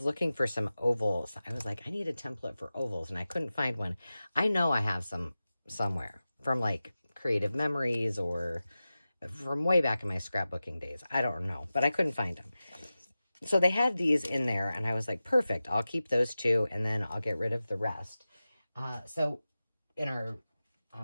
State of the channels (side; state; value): both; inverted; correlation -0.95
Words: looking for some ovals. I was like, I need a template for ovals, and I couldn't find one. I know I have some somewhere from like Creative Memories or from way back in my scrapbooking days. I don't know, but I couldn't find them. So they had these in there, and I was like, perfect. I'll keep those two, and then I'll get rid of the rest. So in our